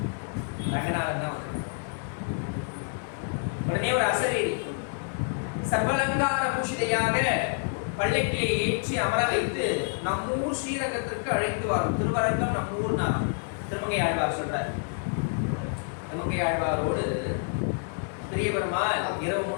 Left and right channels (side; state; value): right; silent; 59 dB below the other